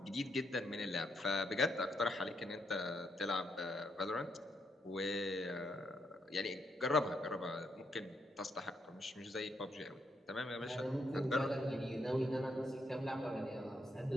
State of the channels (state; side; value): normal; both; correlation 0.77